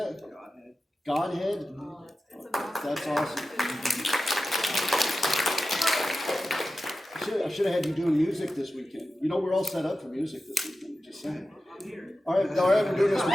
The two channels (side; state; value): both; normal; correlation 0.93